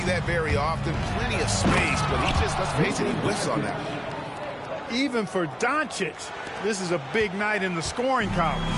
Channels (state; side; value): identical; both; correlation 1.00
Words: that very often. Plenty of space, but he just, let's face it, he whiffs on that. Even for Doncic, this is a big night in the scoring column,